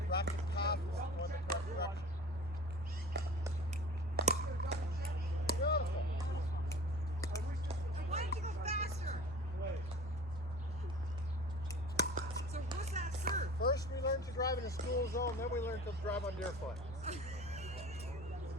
racket path is going the correct direction. Beautiful. I wanted to go faster. So what's that serve? First we learned to drive in a school zone, then we learned to drive on deer foot.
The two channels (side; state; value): both; normal; correlation 0.40